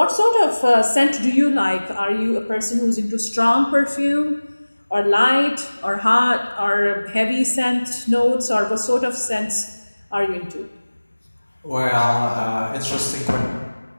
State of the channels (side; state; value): both; inverted; correlation -1.00